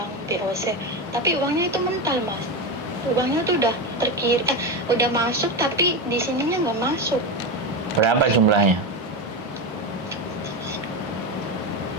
BOC, tapi uangnya itu mental Mas. Uangnya tuh udah udah masuk tapi di sininya nggak masuk. Berapa jumlahnya?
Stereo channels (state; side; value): normal; both; correlation 0.16